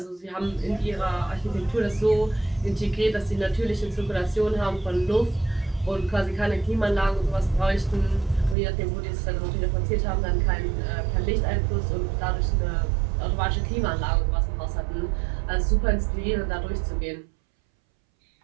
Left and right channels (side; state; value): left; drops out; at 8.6 s